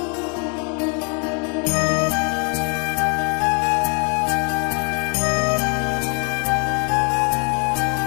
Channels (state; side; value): quieter; right; 36.9 dB